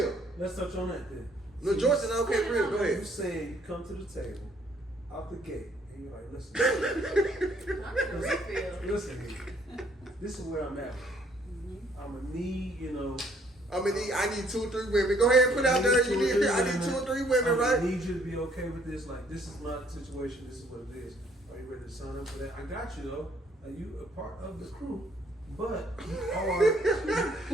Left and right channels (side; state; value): both; normal; correlation 0.64